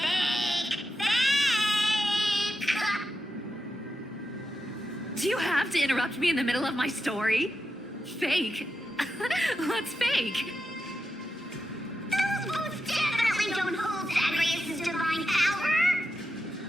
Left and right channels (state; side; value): normal; both; correlation 0.88